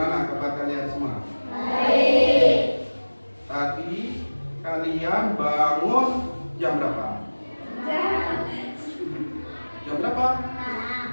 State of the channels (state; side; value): inverted; both; correlation -1.00